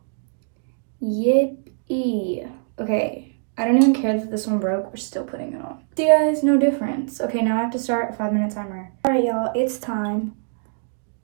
Yippee. Okay, I don't even care that this one broke. We're still putting it on. See, guys, no difference. Okay, now I have to start a 5-minute timer. All right, y'all, it's time.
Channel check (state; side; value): silent; left; digital silence